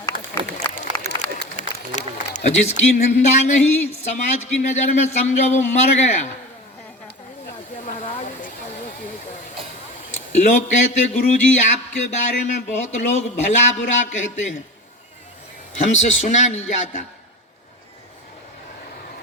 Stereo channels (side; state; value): both; normal; correlation 0.30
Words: और जिसकी निंदा नहीं, समाज की नजर में समझो वो मर गया। लोग कहते गुरुजी आपके बारे में बहुत लोग भला बुरा कहते हैं, हमसे सुना नहीं जाता।